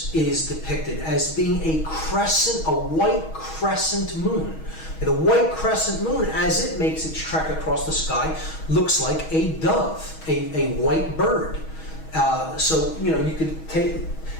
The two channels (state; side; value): late; right; 6.3 ms